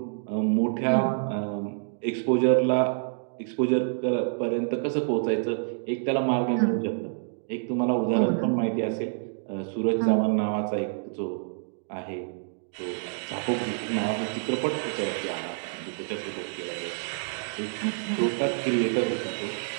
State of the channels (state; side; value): silent; left; digital silence